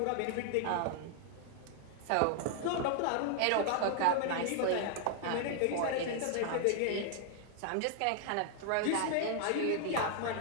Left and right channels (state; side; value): different; both; correlation 0.00